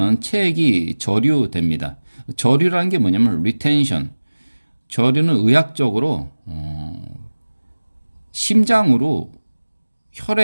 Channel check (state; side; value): inverted; both; correlation -1.00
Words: 체액이 저류됩니다. 저류라는 게 뭐냐면 리텐션. 저류는 의학적으로 심장으로